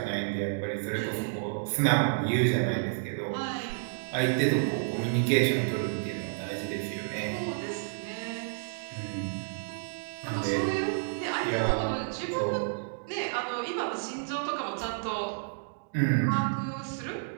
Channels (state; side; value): silent; left; digital silence